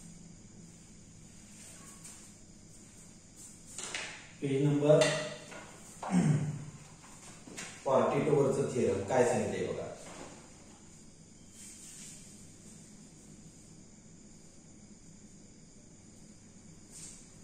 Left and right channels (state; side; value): identical; both; correlation 1.00